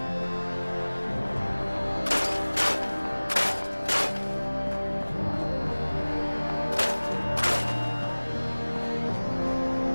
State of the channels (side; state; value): both; inverted; correlation -1.00